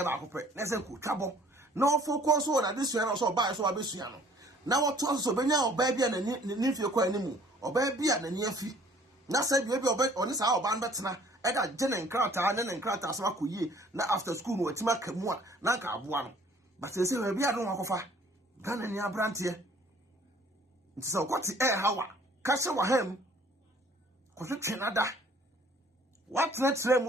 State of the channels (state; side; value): normal; both; correlation 0.56